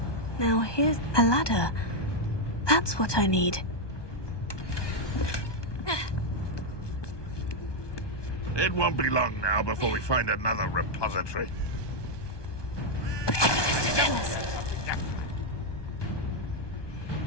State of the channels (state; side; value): late; right; 1.2 ms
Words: Now here's a ladder. That's what I need. It won't be long now before we find another repository.